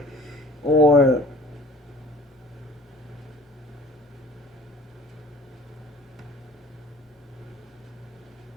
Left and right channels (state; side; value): normal; both; correlation 0.47